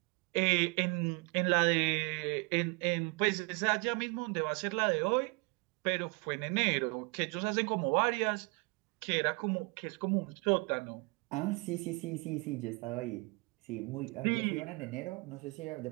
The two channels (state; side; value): quieter; left; 30.3 dB